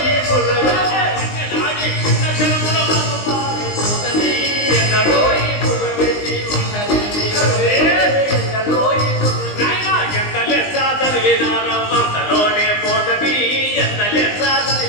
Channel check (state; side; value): late; right; 19 ms